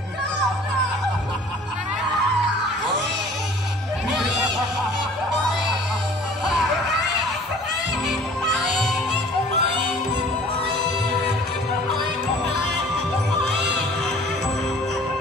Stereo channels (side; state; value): both; normal; correlation 0.50